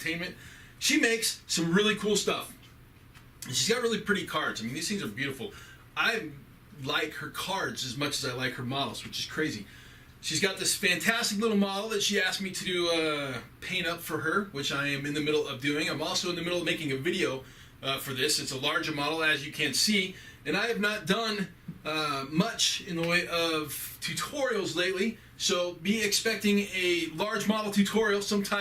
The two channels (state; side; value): identical; both; correlation 1.00